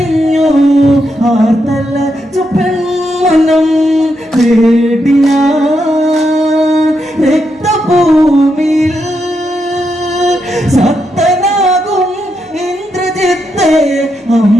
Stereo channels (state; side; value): normal; both; correlation 0.82